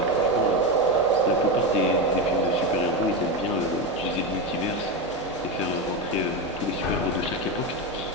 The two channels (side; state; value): both; normal; correlation 0.14